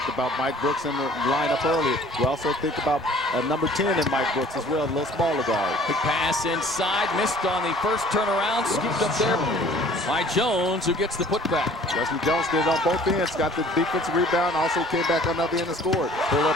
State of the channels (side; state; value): both; normal; correlation 0.51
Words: about Mike Brooks in the lineup earlier. We also think about number 10 in Mike Brooks as well, a little smaller guard. Big pass inside, missed on the first turnaround, scooped up there by Jones, who gets the putback. Wesley Jones did it on both ends, got the defensive rebound, also came back on the other end and scored. Pull up